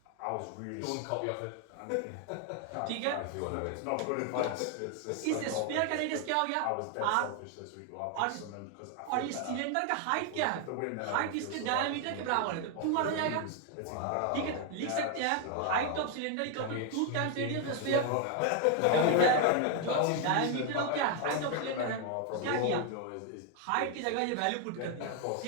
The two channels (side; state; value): both; different; correlation 0.01